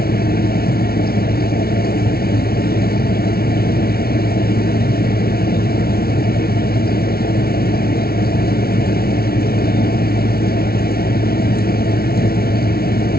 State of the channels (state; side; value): late; right; 0.44 ms